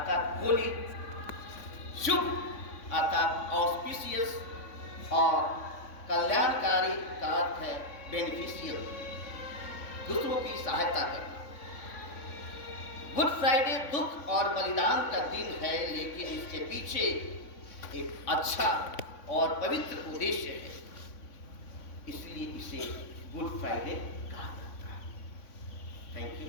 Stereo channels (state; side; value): late; right; 3.5 ms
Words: होली, शुभ अर्थात ऑस्पिशियस और कल्याणकारी का अर्थ है बेनिफिशियल, दूसरों की सहायता करना। गुड फ्राइडे दुख और बलिदान का दिन है, लेकिन इसके पीछे एक अच्छा और पवित्र उद्देश्य है, इसलिए इसे गुड फ्राइडे कहा जाता है। Thank you